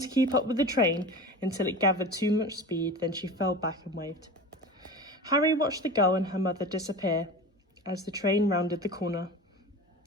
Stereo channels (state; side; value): normal; both; correlation 0.32